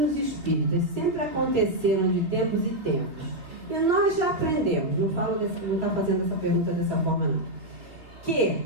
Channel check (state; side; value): late; left; 3.5 ms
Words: espíritas sempre aconteceram de tempos e tempos, e nós já aprendemos, não está fazendo essa pergunta dessa forma não, que